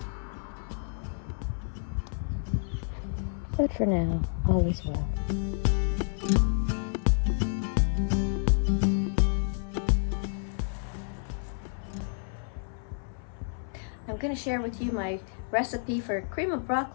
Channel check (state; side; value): silent; right; 58 dB below the other